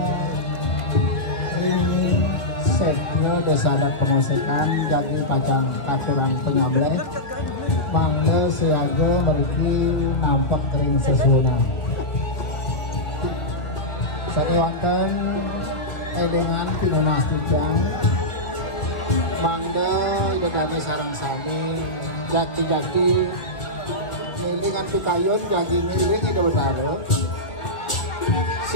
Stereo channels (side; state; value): right; late; 2.0 ms